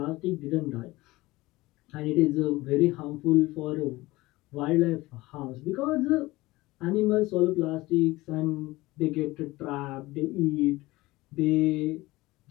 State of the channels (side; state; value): right; quieter; 19.7 dB